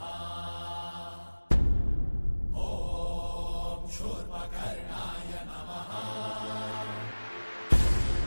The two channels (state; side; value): inverted; both; correlation -1.00